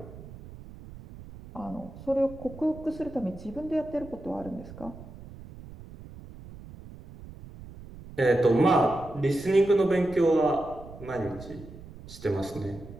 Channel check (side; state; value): right; noise; rumble, 16 dB below the sound